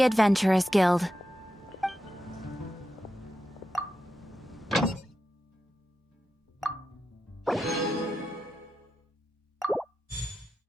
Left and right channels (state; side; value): normal; both; correlation 0.89